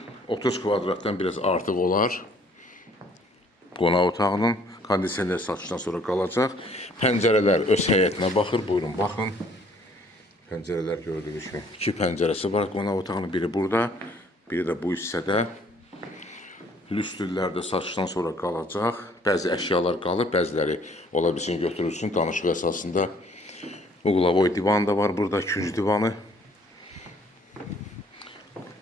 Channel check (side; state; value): both; normal; correlation 0.60